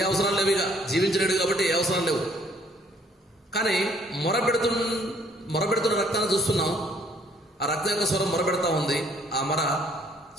అవసరాలు లేవు, ఇక జీవించలేడు కాబట్టి ఏ అవసరాలు లేవు. కానీ మొరపెడుతున్న రక్తాన్ని చూస్తున్నాం. ఆ రక్తం యొక్క స్వరం మొరపెడతా ఉంది. ఆ మొర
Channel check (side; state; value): both; normal; correlation 0.62